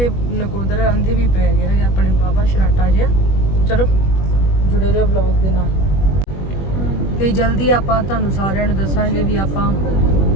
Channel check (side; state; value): right; late; 21 ms